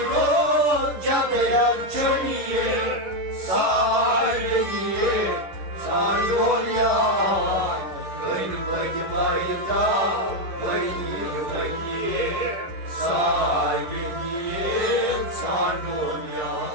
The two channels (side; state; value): left; late; 11 ms